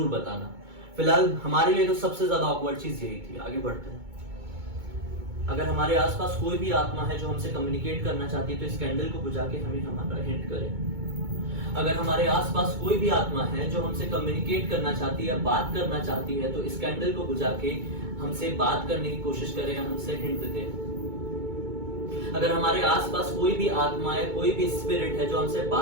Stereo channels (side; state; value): left; late; 2.2 ms